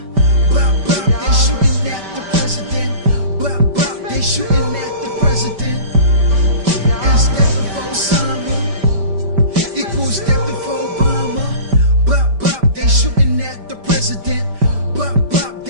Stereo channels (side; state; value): left; late; 5.1 ms